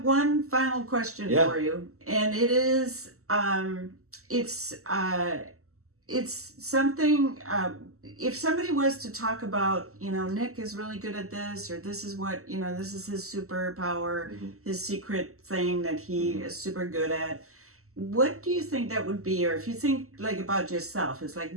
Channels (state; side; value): late; left; 0.63 ms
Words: one final question for you, and it is, it's something, if somebody was to talk about, Nick is really good at this, or this is what, this is his superpower, his secret thing that he is super good at, what do you think that would be? Or if you think about yourself, it's